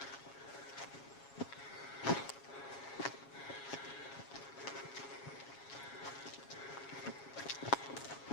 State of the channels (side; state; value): right; late; 7.3 ms